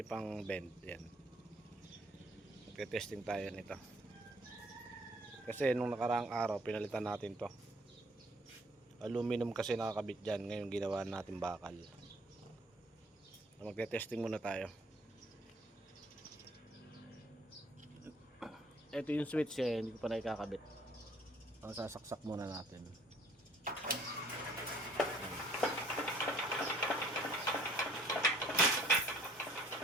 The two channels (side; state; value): both; normal; correlation 0.58